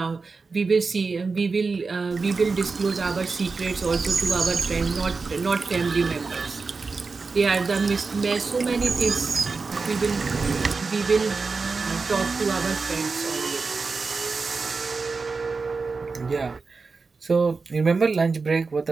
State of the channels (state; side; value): quieter; left; 4.4 dB